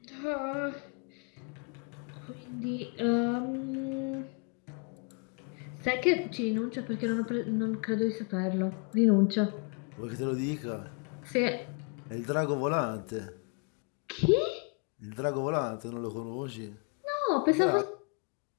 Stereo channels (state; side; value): quieter; right; 36.0 dB